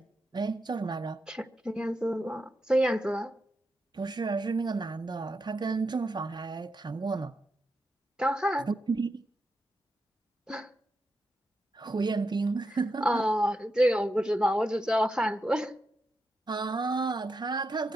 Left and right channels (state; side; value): normal; both; correlation 0.85